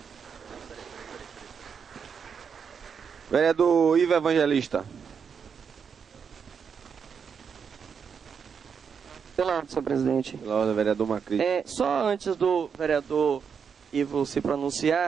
Vereador Ivo Evangelista. Pela ordem, senhor presidente. Pela ordem, vereador Macri. Só antes do vereador Ivo se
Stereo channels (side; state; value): left; quieter; 6.6 dB